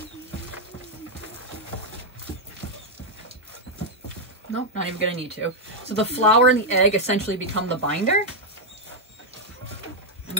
Nope, not even gonna need to. So the flour and the egg essentially become the binder. And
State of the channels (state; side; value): normal; both; correlation -0.01